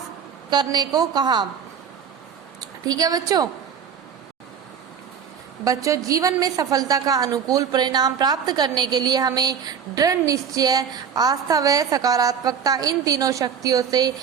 करने को कहा। ठीक है बच्चों जीवन में सफलता का अनुकूल परिणाम प्राप्त करने के लिए हमें दृढ़ निश्चय, आस्था व सकारात्मकता इन तीनों शक्तियों से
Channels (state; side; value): quieter; left; 7.3 dB